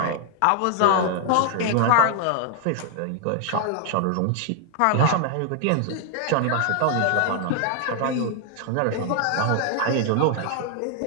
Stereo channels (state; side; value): different; both; correlation 0.00